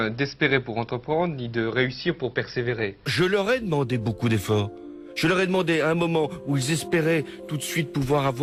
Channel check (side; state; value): both; identical; correlation 1.00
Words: d'espérer pour entreprendre, ni de réussir pour persévérer. Je leur ai demandé beaucoup d'efforts. Je leur ai demandé à un moment où ils espéraient tout de suite pouvoir